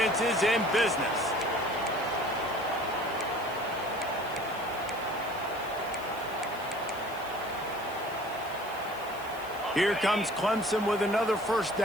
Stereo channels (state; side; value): noise; right; hiss, 19 dB below the sound